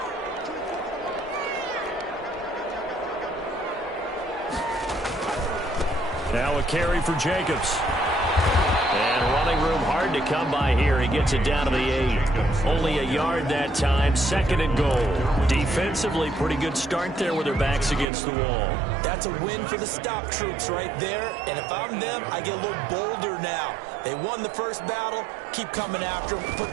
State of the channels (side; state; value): left; drops out; at 18.1 s